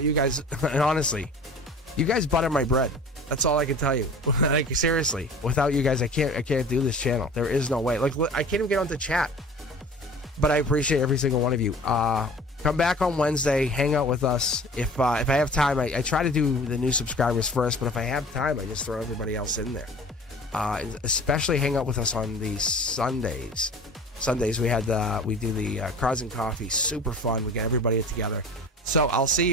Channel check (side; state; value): both; normal; correlation 0.42